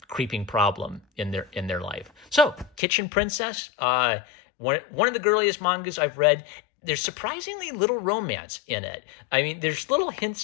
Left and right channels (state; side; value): drops out; right; at 2.8 s